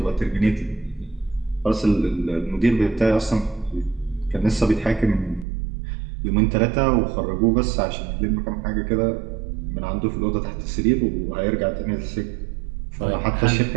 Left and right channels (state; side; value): drops out; left; at 5.5 s